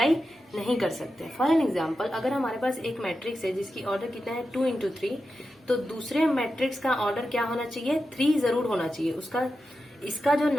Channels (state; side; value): normal; both; correlation 0.90